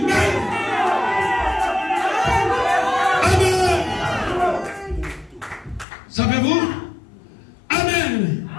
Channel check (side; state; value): right; drops out; at 5.9 s